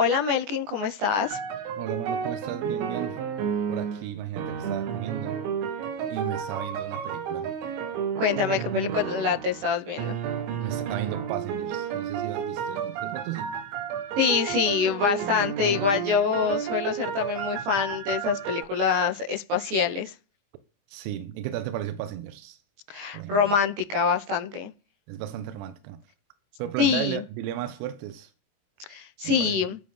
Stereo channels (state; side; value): late; left; 20 ms